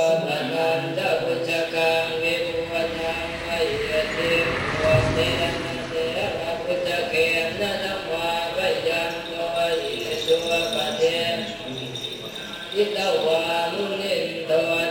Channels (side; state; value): both; identical; correlation 1.00